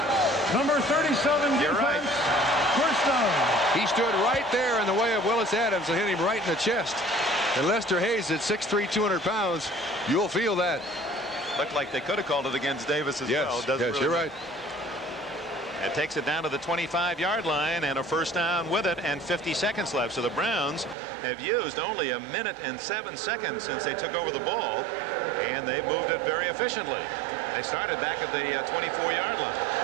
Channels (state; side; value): drops out; left; at 21.0 s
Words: Number 37 You're defense. right. First down. He stood right there in the way of Willis Adams and hit him right in the chest. And Lester Hayes at 6'3", 200 pounds. You'll feel that. Looked like they could have called it against Davis as well. Yes, Really you're right. It takes it down to the 25-yard line and a first down with it, and 50 seconds left. So the Browns have used only 1 minute and 7 seconds since they took over the ball, and they've moved it very efficiently. They started back at the 24-yard line.